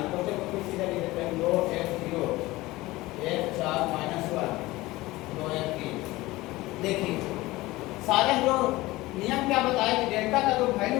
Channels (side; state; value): right; quieter; 19.3 dB